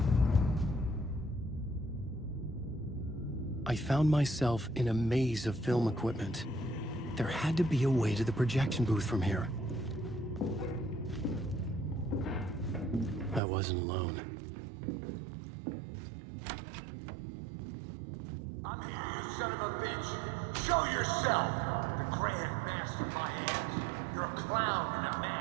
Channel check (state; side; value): drops out; left; at 13.4 s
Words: I found myself in a maze of film equipment. There had to be a way to the projection booth from here. I wasn't alone. I'm here, you son of a bitch. Show yourself. The Grand Master my ass. You're a clown in a mask.